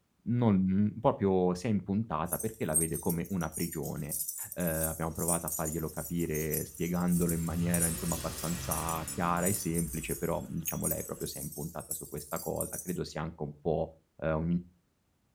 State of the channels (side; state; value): both; identical; correlation 1.00